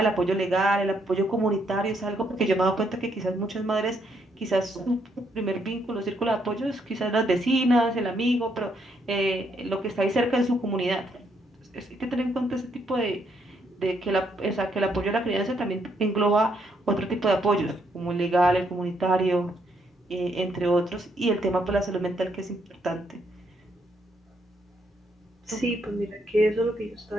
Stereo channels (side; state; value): both; normal; correlation 0.74